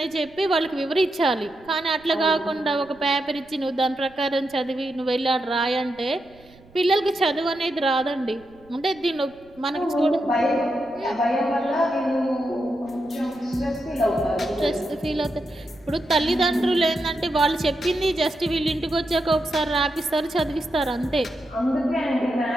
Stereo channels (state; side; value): noise; right; rumble, 27 dB below the sound